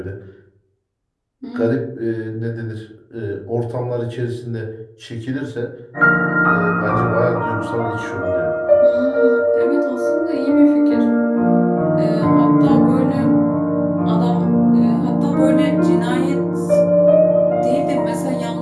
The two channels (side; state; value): both; identical; correlation 1.00